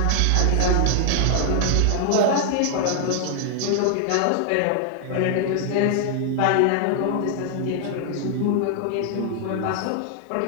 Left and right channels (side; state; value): both; different; correlation 0.00